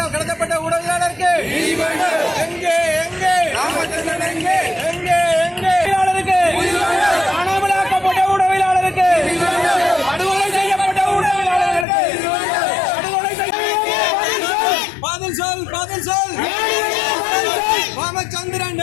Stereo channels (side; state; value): right; drops out; at 11.9 s